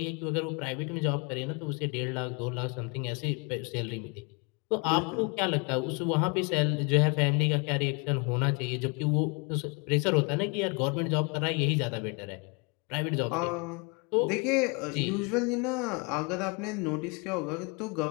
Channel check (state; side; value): quieter; right; 31.9 dB